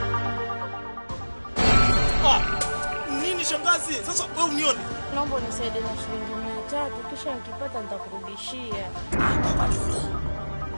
Shangazi, sasa wewe unione. Naomba unisaidie na shilingi 300 kisha nikipata nitakurudishia.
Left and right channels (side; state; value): both; inverted; correlation -1.00